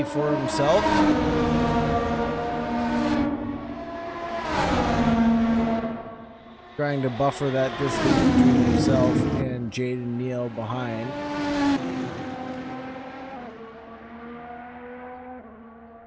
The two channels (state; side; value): identical; both; correlation 1.00